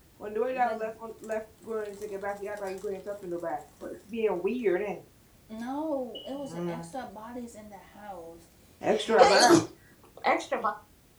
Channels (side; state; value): both; identical; correlation 1.00